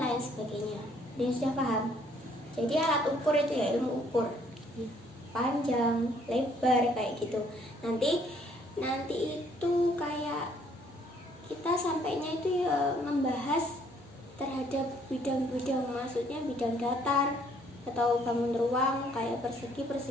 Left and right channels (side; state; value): both; normal; correlation 0.64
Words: lain sebagainya. Dia sudah paham? Jadi alat ukur itu ya ilmu ukur, panjang, lebar kayak gitu. Nanti itu kayak kita sampainya itu ya membahas terhadap bidang-bidang, maksudnya bidang datar atau bangun ruang kayak